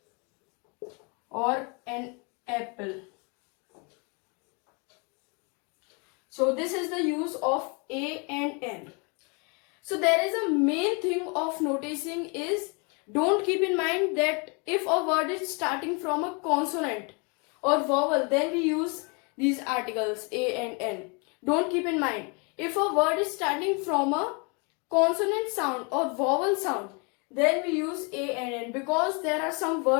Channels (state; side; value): quieter; right; 32.9 dB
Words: or an apple. So this is the use of a and n. So there is a main thing of noticing is, don't keep in mind that if a word is starting from a consonant or vowel, then we use these articles a and n. Don't keep in mind, if a word is starting from a consonant sound or vowel sound, then we use a and n, because there are some